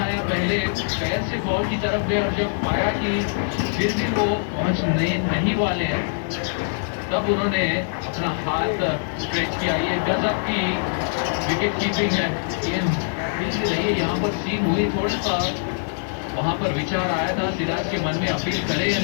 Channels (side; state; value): right; silent; digital silence